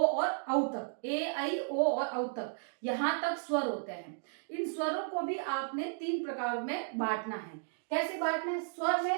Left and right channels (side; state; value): left; silent; digital silence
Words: औ तक, ए आई ओ और औ तक, यहाँ तक स्वर होते हैं। इन स्वरों को भी आपने 3 प्रकार में बांटना है। कैसे बांटना है? स्वर